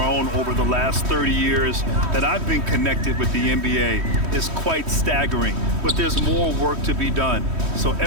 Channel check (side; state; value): left; late; 3.1 ms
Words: over the last 30 years that I've been connected with the NBA. Is quite staggering, but there's more work to be done. So